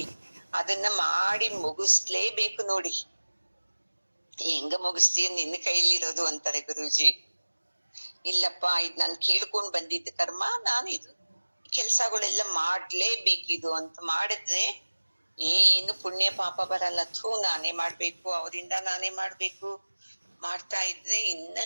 ಅದನ್ನ ಮಾಡಿ ಮುಗಿಸ್ಲೇಬೇಕು ನೋಡಿ. ಹೆಂಗ ಮುಗಿಸ್ತೀಯ, ನಿನ್ನ ಕೈಲಿರೋದು ಅಂತಾರೆ ಗುರೂಜಿ. ಇಲ್ಲಪ್ಪ, ಇದ್ ನಾನ್ ಕೇಳ್ಕೊಂಡ್ ಬಂದಿದ್ದ ಕರ್ಮ, ನಾನು ಇದು ಕೆಲ್ಸಗಳೆಲ್ಲ ಮಾಡ್ಲೇಬೇಕಿದು ಅಂತ ಮಾಡಿದ್ರೆ ಏನು ಪುಣ್ಯ ಪಾಪ ಬರಲ್ಲ. ನಾನೇ ಮಾಡ್ಬೇಕು, ಅವರಿಂದ ನಾನೇ ಮಾಡ್ಬೇಕು, ಮಾಡ್ತಾ ಇದ್ರೆ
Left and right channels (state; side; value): inverted; both; correlation -1.00